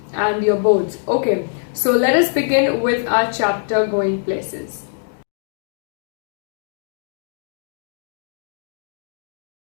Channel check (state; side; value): silent; right; digital silence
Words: and your boards. Okay, so let us begin with our chapter Going Places.